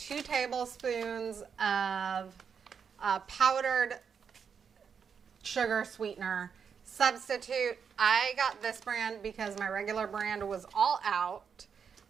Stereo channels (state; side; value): quieter; left; 6.7 dB